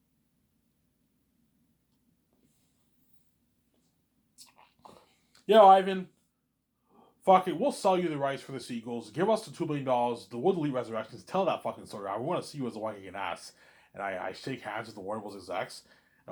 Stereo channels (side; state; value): both; identical; correlation 1.00